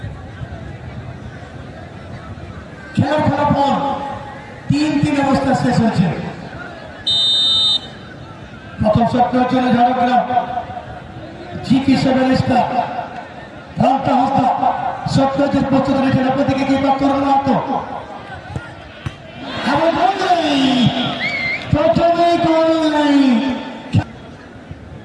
খেলার ফলাফল 3-3 অবস্থা শেষ হয়েছে। প্রথম শট নেওয়ার জন্য ঝাড়গ্রাম জিপি সেভেন স্টার রামটা হস্তা শট নেওয়ার প্রস্তুত রয়েছেন। আপনাদেরকে কি তরুণ মাত্র প্রথমেই গোল নাই।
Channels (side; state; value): both; identical; correlation 1.00